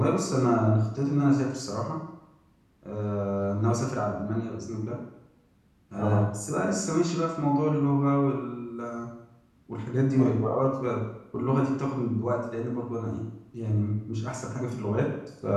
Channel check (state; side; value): identical; both; correlation 1.00